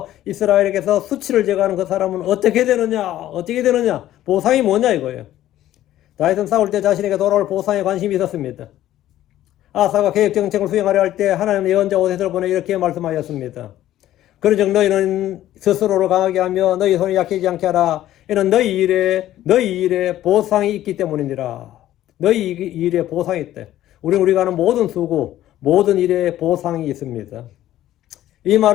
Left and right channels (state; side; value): quieter; right; 13.4 dB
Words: 이스라엘에게서 수치를 제거하는 그 사람은 어떻게 되느냐, 보상이 뭐냐 이거예요. 다윗은 싸울 때 자신에게 돌아올 보상에 관심이 있었습니다. 아사가 계획 정책을 수행하려 할 때 하나님의 예언자 오셋을 보내 이렇게 말씀하였습니다. 그런즉 너희는 스스로를 강하게 하며 너희 손이 약해지지 않게 하라. 이는 너희 일에 보상이 있기 때문이니라. 너희 일에 보상이 있대. 우리가 하는 모든 수고, 모든 일에 보상이 있습니다. 이